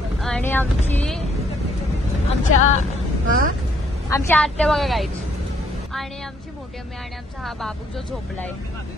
आणि आमच्या आत्या बघा गाईच. आणि आमची मोठी अम्मी आणि आमचा हा बाबू जो झोपलाय.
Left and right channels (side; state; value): both; normal; correlation 0.67